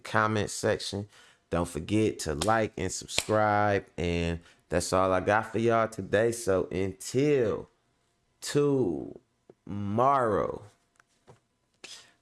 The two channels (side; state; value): both; identical; correlation 1.00